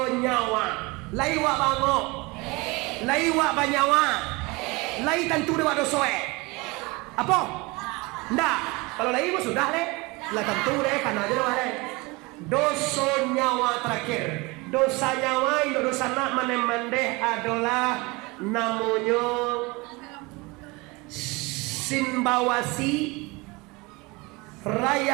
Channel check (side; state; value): left; quieter; 25.0 dB